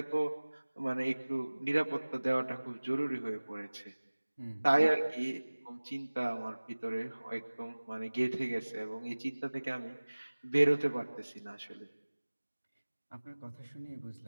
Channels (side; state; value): both; inverted; correlation -1.00